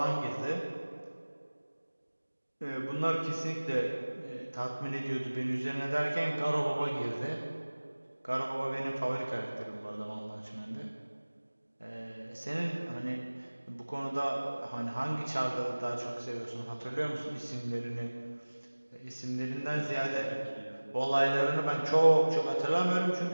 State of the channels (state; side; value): inverted; both; correlation -1.00